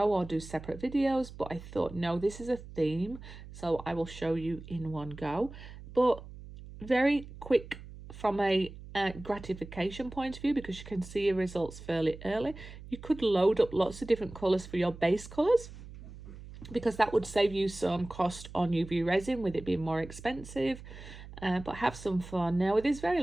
or do separate videos, but I thought, no, this is a theme, so I will show you in one go. But very quick from a gratification point of view, because you can see your results fairly early. You could load up lots of different colours for your base colours, because that would save you some cost on UV resin with it being more expensive. But have some fun. Now with this very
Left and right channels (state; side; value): noise; right; hum, 15 dB below the sound